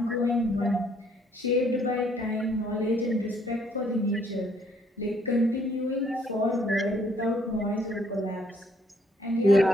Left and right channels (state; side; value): normal; both; correlation 0.65